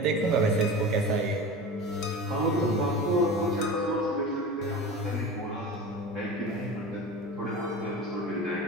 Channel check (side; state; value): both; normal; correlation 0.31